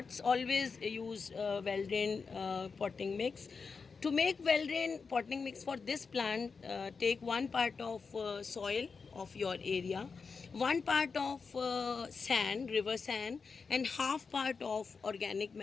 always use well drained potting mix. To make well drained potting mix for this plant, take one part of soil of your area, one part of sand, river sand, and half part of organic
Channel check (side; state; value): right; quieter; 5.1 dB